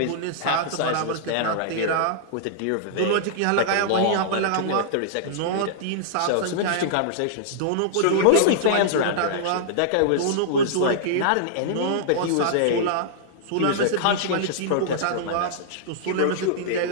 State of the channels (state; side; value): different; both; correlation -0.02